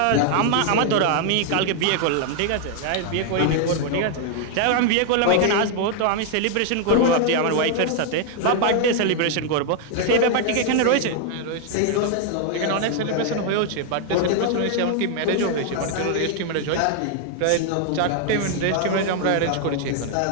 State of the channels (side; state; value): both; different; correlation 0.00